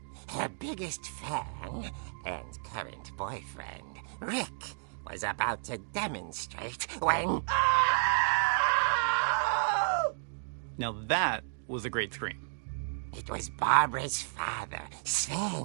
Her biggest fan and current boyfriend, Rick, was about to demonstrate when... Now that was a great scream. It was Barbara's father,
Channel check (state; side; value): silent; left; digital silence